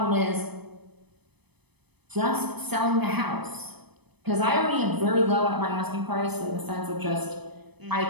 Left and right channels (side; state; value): left; late; 0.98 ms